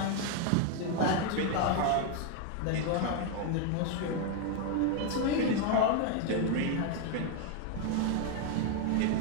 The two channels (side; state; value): both; different; correlation 0.01